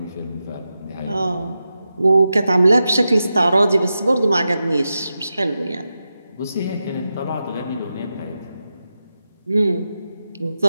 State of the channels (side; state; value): both; inverted; correlation -0.90